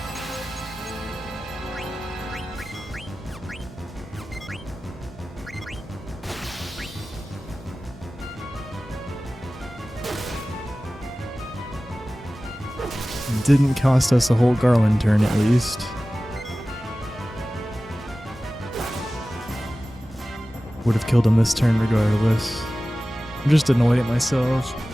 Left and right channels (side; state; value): both; normal; correlation 0.96